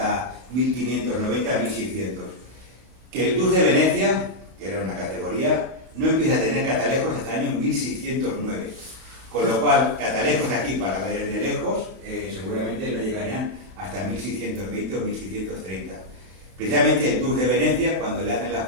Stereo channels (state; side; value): late; left; 32 ms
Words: 1590-1600, que el Dux de Venecia, que era una categoría, no empieza a tener catalejos hasta el año 1609. Con lo cual, catalejos aquí para ver de lejos seguramente no llegarían hasta 1620 o 1630. Precisamente el Dux de Venecia, cuando le hacen las